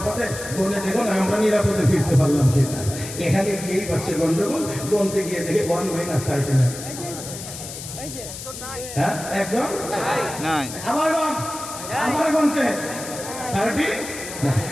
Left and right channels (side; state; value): left; noise; hiss, 10 dB below the sound